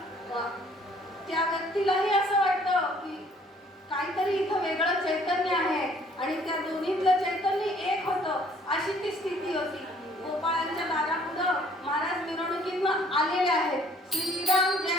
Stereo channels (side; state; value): both; normal; correlation 0.59